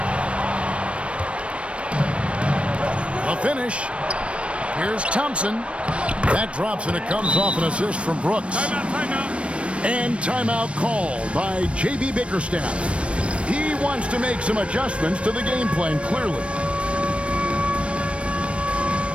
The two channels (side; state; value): left; late; 0.060 ms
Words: A finish. Here's Thompson. That drops, and it comes off an assist from Brooks. Timeout. And timeout called by J.B. Bickerstaff. He wants to make some adjustments to the game plan, clearly.